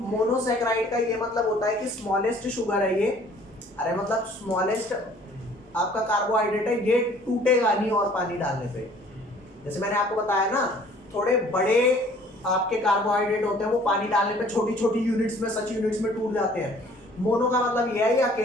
मोनोसैकेराइड का ये मतलब होता है कि स्मॉलेस्ट शुगर है ये, अरे मतलब स्मॉलेस्ट आपका कार्बोहाइड्रेट है, ये टूटेगा नहीं और पानी डालने पे। जैसे मैंने आपको बताया ना, थोड़े बड़े आपके कार्बोहाइड्रेट होते हैं वो पानी डालने पे छोटी छोटी यूनिट्स में, सच यूनिट्स में टूट जाते हैं। मोनो का मतलब ये है, ये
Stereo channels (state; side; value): normal; both; correlation 0.54